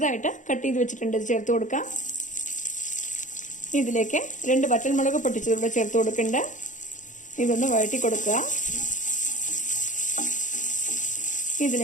കട്ട് ചെയ്ത് വെച്ചിട്ടുണ്ട്. ഇത് ചേർത്ത് കൊടുക്കാം. ഇതിലേക്ക് 2 വറ്റൽമുളക് പൊട്ടിച്ചതൂടെ ചേർത്ത് കൊടുക്കണ്ട. ഇതൊന്ന് വഴറ്റി കൊടുക്കുക.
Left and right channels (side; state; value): right; late; 0.36 ms